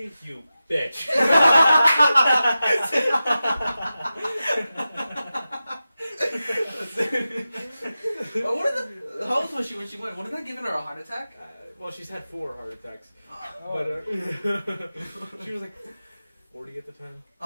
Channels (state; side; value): inverted; both; correlation -0.94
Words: you bitch." How old was she when she went? Wasn't that giving her a heart attack? Well, she's had 4 heart attacks, Oh, but she was like 40 at the time.